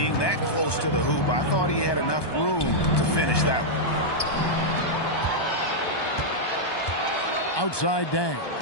that close to the hoop, I thought he had enough room to finish that one. Outside Dang.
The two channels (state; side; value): late; right; 1.2 ms